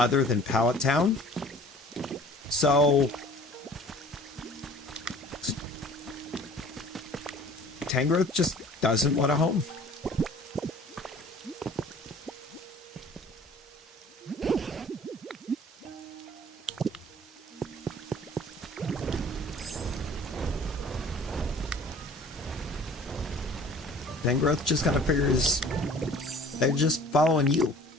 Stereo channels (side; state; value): both; normal; correlation 0.48